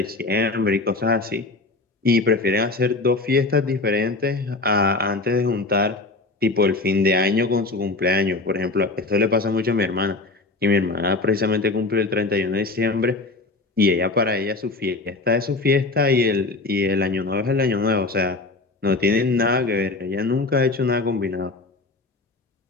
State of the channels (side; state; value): right; quieter; 3.4 dB